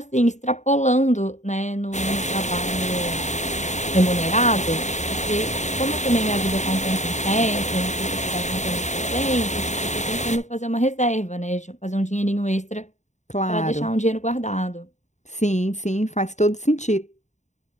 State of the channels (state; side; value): late; right; 0.34 ms